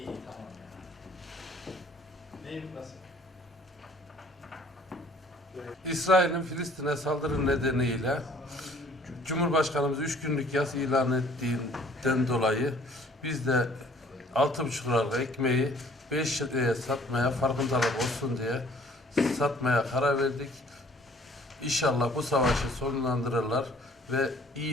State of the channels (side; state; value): both; normal; correlation 0.56